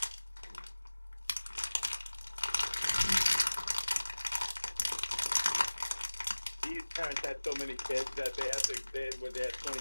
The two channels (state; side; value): inverted; both; correlation -1.00